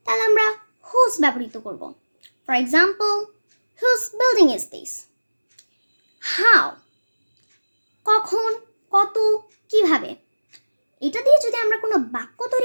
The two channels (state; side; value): inverted; both; correlation -1.00